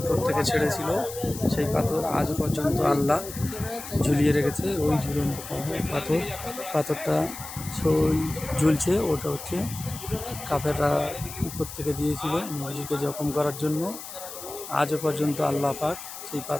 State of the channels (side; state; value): left; noise; hiss, 11 dB below the sound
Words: থেকে ছেড়েছিল, সেই পাথর আজও পর্যন্ত আল্লাহ ঝুলিয়ে রেখেছে। ওই ঝুলন্ত পাথরটা ঝুলছে, ওটা হচ্ছে কাফেররা উপর থেকে দিয়েছিল নবীজিকে জখম করার জন্য। আজও পর্যন্ত আল্লাহ পাক সেই